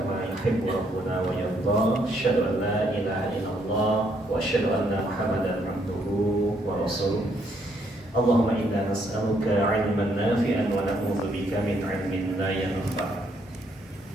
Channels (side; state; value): both; normal; correlation 0.71